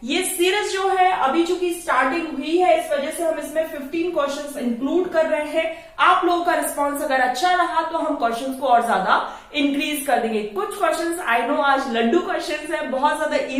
ये सीरीज जो है अभी चूंकि स्टार्टिंग हुई है, इस वजह से हम इसमें 15 क्वेश्चंस इंक्लूड कर रहे हैं। आप लोगों का रिस्पांस अगर अच्छा रहा तो हम क्वेश्चंस को और ज्यादा इंक्रीज कर देंगे। कुछ क्वेश्चंस आई नो आज लड्डू क्वेश्चंस है, बहुत ज्यादा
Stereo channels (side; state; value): both; identical; correlation 1.00